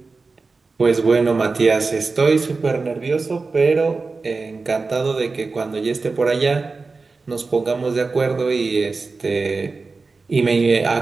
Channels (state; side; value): quieter; left; 4.1 dB